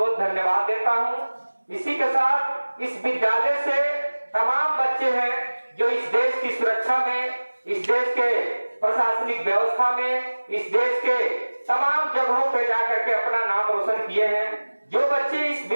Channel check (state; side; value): inverted; both; correlation -1.00